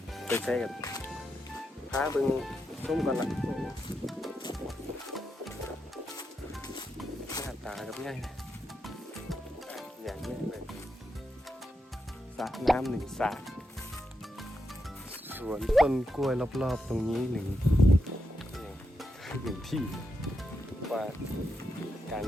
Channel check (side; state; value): both; normal; correlation 0.85